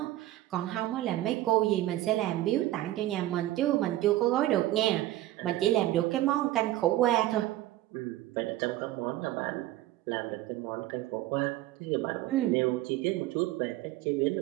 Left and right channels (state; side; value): quieter; left; 15.2 dB